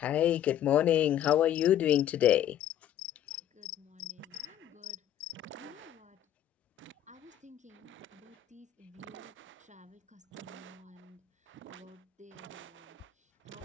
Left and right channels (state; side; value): quieter; right; 11.0 dB